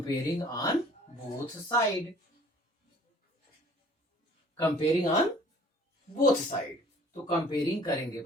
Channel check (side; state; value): both; normal; correlation 0.53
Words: on both side, comparing on both side, तो कंपेयरिंग करेंगे